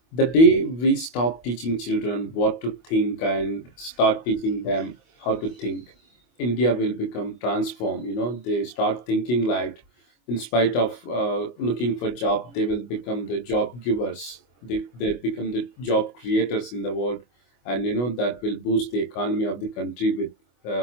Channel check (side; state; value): right; late; 25 ms